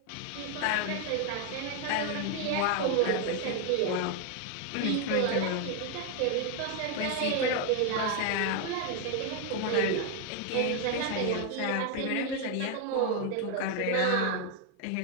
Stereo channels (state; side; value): different; both; correlation 0.01